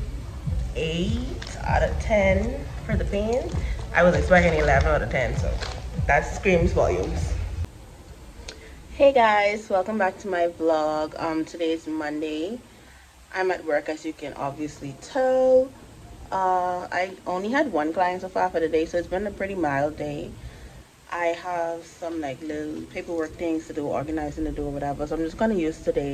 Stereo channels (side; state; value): both; identical; correlation 1.00